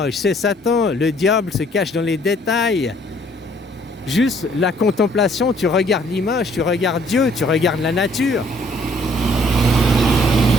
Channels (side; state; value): both; normal; correlation 0.62